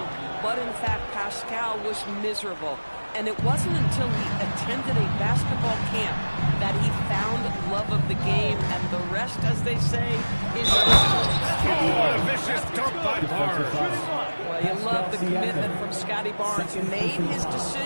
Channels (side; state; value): both; inverted; correlation -1.00